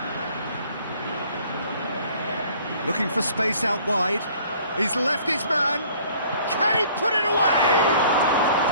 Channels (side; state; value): both; inverted; correlation -0.55